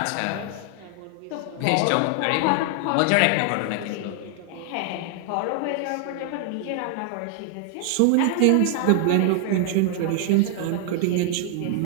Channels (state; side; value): different; both; correlation 0.00